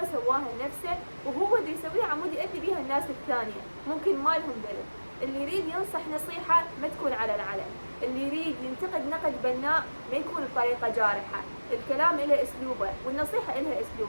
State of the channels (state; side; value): inverted; both; correlation -1.00